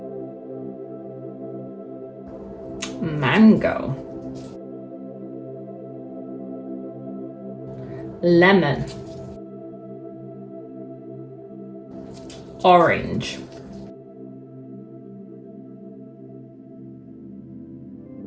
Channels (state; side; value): identical; both; correlation 1.00